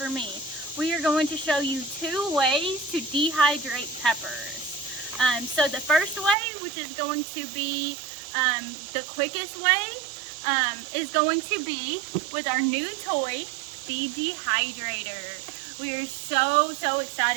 me. We are going to show you 2 ways to dehydrate peppers. So the first way, which is going to be the quickest way, is going to be with our new toy, the dehydrator. We are so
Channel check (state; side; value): drops out; left; at 6.4 s